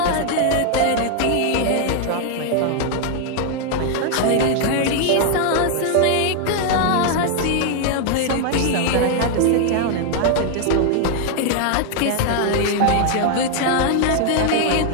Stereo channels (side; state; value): both; different; correlation 0.00